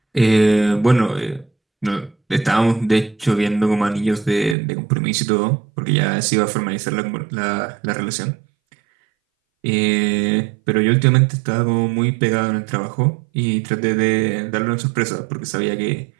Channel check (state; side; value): drops out; left; at 4.5 s